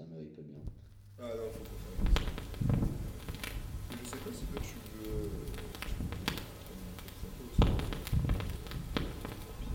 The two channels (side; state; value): both; identical; correlation 1.00